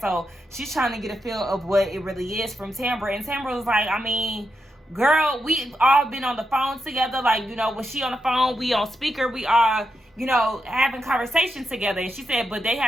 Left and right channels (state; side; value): normal; both; correlation 0.85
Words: So she's trying to get a feel of what it really is from Tambra. And Tambra was like, I mean, girl, we all been on the phone together. Like, you know, when she on the phone, we on speaker, we are, you know, having conversations together. And she said, but they